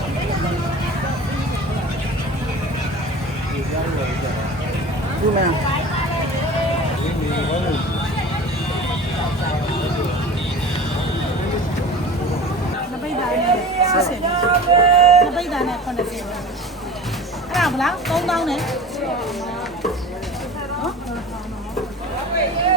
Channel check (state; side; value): normal; both; correlation 0.37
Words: ဒီမှာ နပိတ်တာနဲ့60နပိတ်တာနဲ့80အဲ့ဒါဗလား3000နဲ့